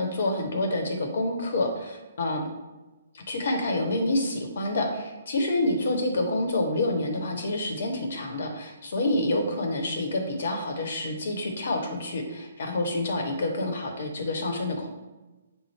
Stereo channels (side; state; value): both; inverted; correlation -0.67